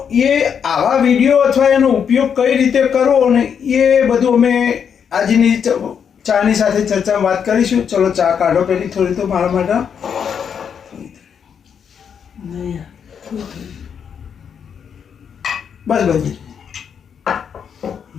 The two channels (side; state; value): right; quieter; 7.4 dB